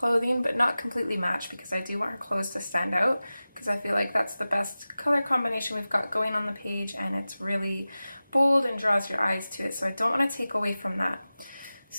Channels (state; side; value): inverted; both; correlation -0.96